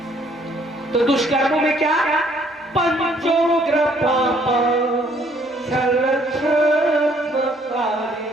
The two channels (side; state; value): both; normal; correlation 0.64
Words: तो दुष्कर्मों में क्या? पंचोग्र पाप छल